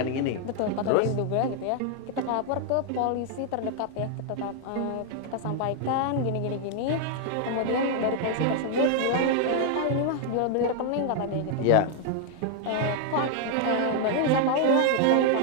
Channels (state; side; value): different; both; correlation 0.00